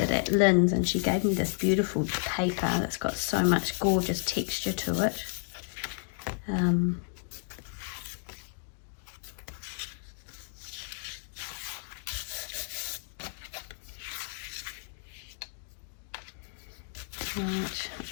it at Lynn's and she gave me this beautiful paper that's got so much gorgeous texture to it. Right, I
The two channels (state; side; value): silent; right; 57 dB below the other